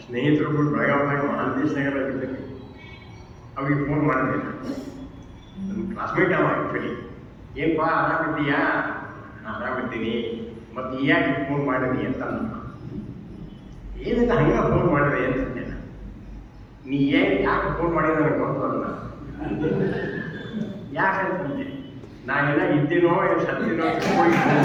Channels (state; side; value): identical; both; correlation 1.00